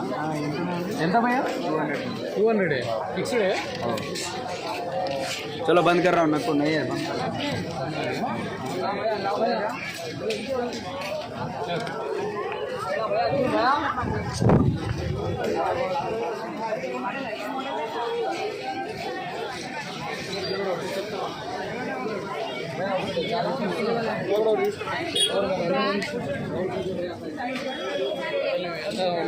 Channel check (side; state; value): both; identical; correlation 1.00